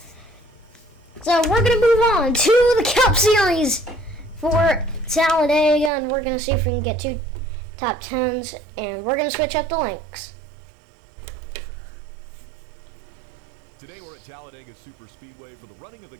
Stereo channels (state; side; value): drops out; left; at 5.9 s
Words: So we're going to move on to the Cup Series for Talladega, and we're going to see if we can get 2 top 10s, and we're going to switch up the links. Today we're at Talladega Super Speedway for the running of the